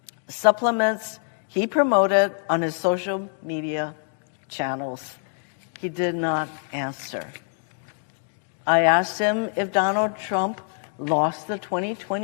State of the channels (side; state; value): right; silent; 57 dB below the other